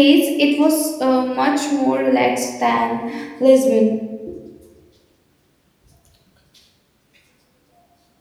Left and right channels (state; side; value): identical; both; correlation 1.00